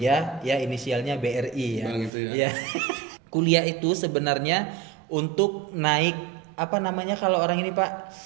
ya inisialnya BRI ya. Bang itu ya. Iya. Kuliah itu sebenarnya untuk naik apa namanya kalau orang ini Pak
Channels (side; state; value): left; drops out; at 2.1 s